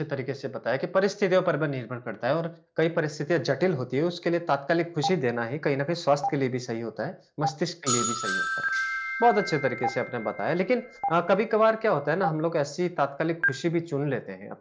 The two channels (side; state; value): both; identical; correlation 1.00